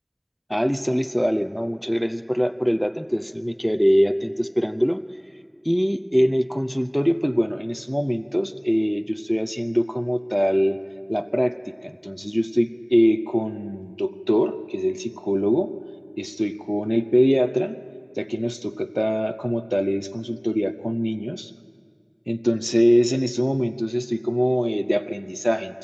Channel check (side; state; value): both; identical; correlation 1.00